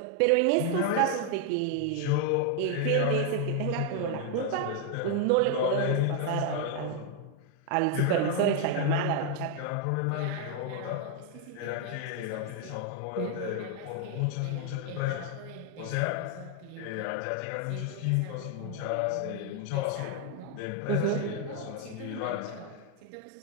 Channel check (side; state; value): both; different; correlation 0.01